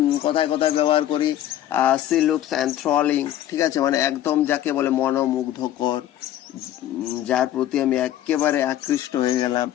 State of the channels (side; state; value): right; quieter; 12.3 dB